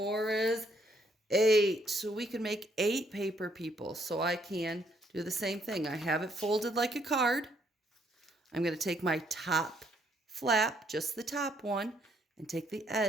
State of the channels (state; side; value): normal; both; correlation 0.70